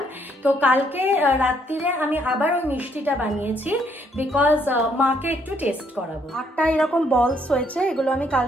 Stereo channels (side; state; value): both; normal; correlation 0.69